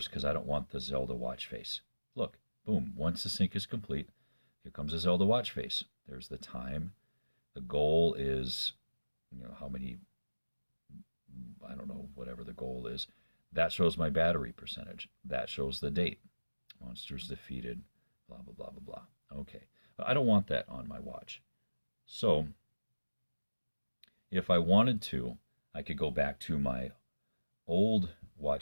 because I don't want the Zelda watch face. Look, boom, once the sync is complete, here comes a Zelda watch face. There's the time. The goal is, how many, I don't know, whatever the goal is. That shows my battery percentage. That shows the date. Monsters defeated, blah, blah, blah, blah, blah. Okay, but I don't want that on my watch. So if I wanted to, I could go back to my old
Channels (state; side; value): inverted; both; correlation -1.00